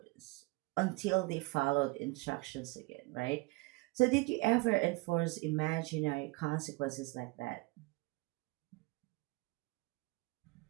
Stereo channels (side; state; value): left; quieter; 25.1 dB